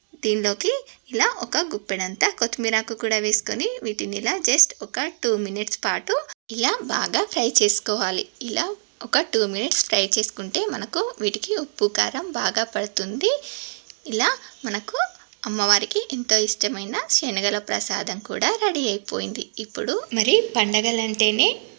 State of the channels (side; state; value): left; silent; digital silence